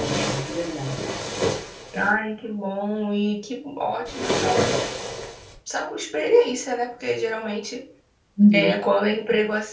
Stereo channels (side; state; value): both; identical; correlation 1.00